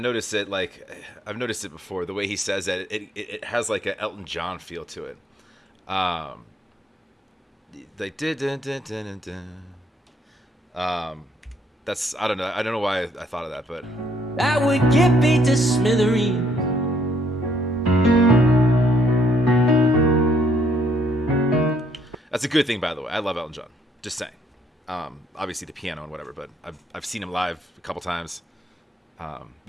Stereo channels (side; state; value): both; normal; correlation 0.68